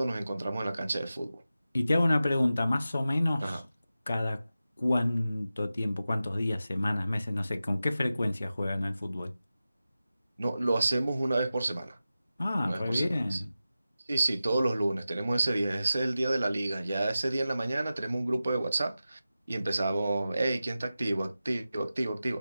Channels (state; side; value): inverted; both; correlation -0.94